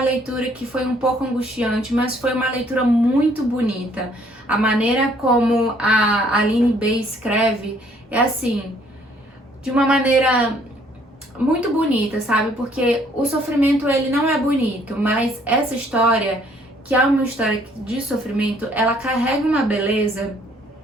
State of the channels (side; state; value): both; normal; correlation 0.63